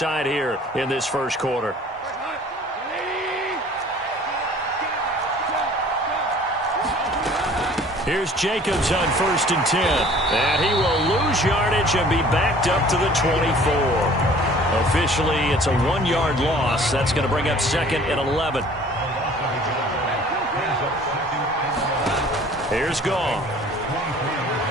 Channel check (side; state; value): both; normal; correlation 0.50